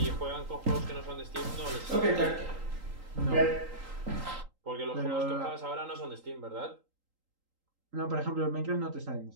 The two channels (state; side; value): late; left; 3.8 ms